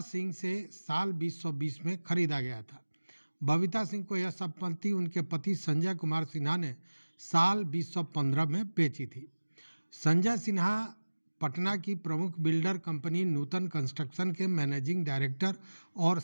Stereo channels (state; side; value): inverted; both; correlation -1.00